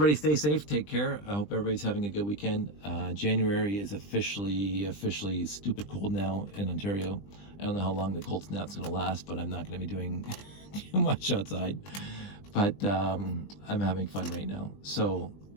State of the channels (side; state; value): right; late; 20 ms